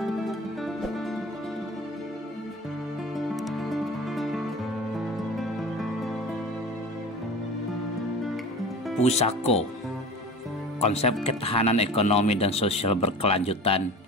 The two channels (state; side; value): normal; both; correlation 0.36